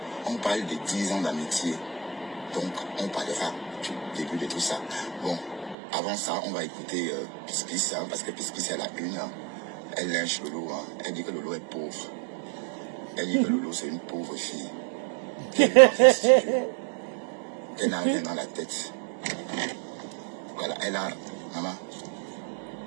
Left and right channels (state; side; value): drops out; left; at 5.8 s